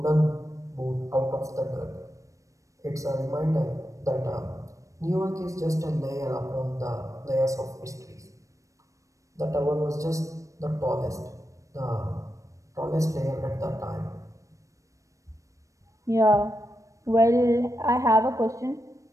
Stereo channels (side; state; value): left; late; 0.16 ms